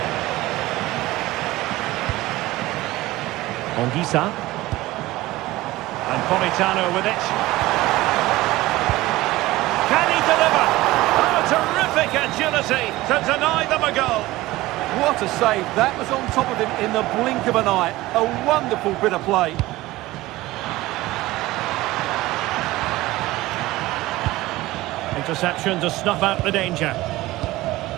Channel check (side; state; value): left; quieter; 18.1 dB